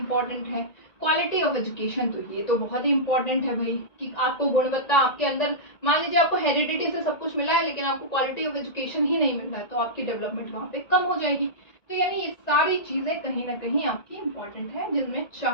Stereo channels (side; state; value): right; late; 1.9 ms